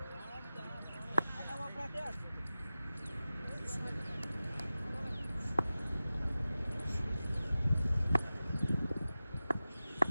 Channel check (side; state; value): both; inverted; correlation -0.95